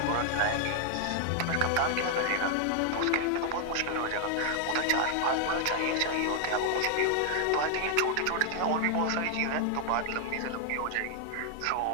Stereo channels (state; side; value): different; both; correlation 0.00